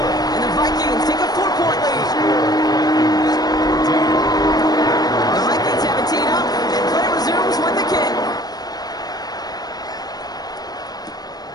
And the Vikings take a 4-point lead. The Vikings have it teed up, and play resumes with the kick.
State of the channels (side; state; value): right; late; 0.19 ms